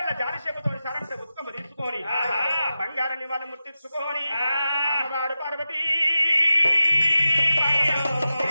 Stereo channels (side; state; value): both; inverted; correlation -0.92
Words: జాలి చెబుతోని సరంత ఉత్కమ తీసుకొని బంగారాన్ని వాళ్ళు ముట్టించుకొని అమ్మవారు పార్వతీ